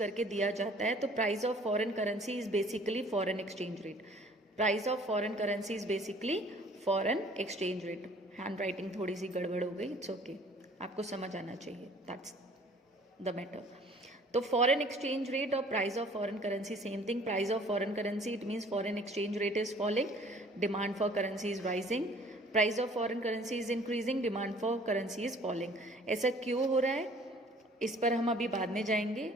दिया जाता है. तो price of foreign currency is basically foreign exchange rate. Price of foreign currency is basically foreign exchange rate. Hand writing थोड़ी सी गड़बड़ हो गई, इट्स ओके, आपको समझ आना चाहिए, दैट्स द मैटर. तो फॉरेन एक्सचेंज रेट और price of foreign currency same thing. Price of foreign currency, it means foreign exchange rate is falling, demand for currency is rising. Price of foreign currency is increasing, demand for currency is falling. ऐसा क्यों हो रहा है, इस पर हम अभी बाद में जाएंगे.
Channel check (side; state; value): both; normal; correlation 0.54